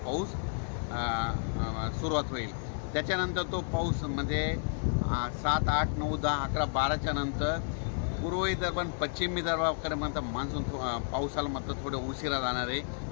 पाऊस सुरुवात होईल. त्याच्यानंतर तो पाऊस म्हणजे 7, 8, 9, 10, 11, 12च्या नंतर पूर्व विदर्भ आणि पश्चिम विदर्भाकडे म्हणतात मान्सून पावसाला थोडं उशिरा जाणार आहे.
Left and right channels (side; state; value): right; silent; 57 dB below the other